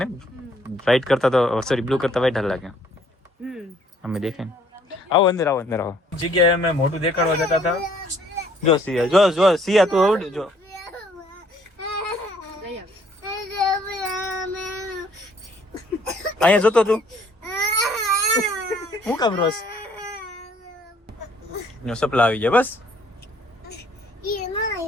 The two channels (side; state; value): both; normal; correlation 0.62